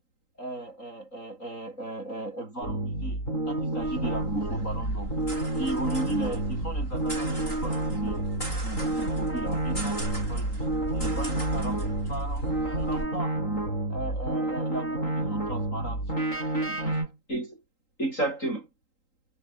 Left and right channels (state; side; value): late; right; 3.8 ms